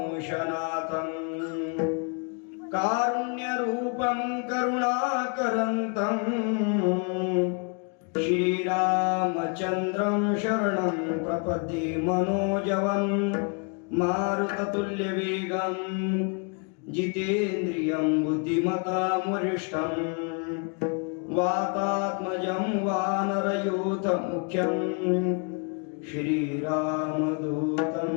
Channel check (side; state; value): right; quieter; 37.5 dB